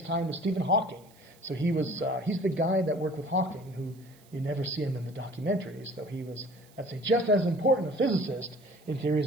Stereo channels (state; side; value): noise; right; hiss, 28 dB below the sound